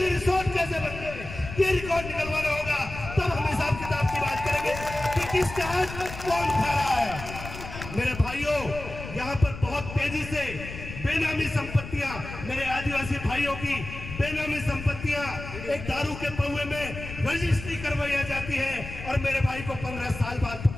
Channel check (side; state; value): left; noise; rumble, 11 dB below the sound